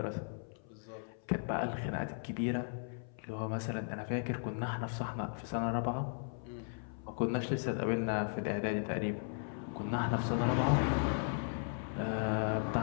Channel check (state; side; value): silent; right; 53 dB below the other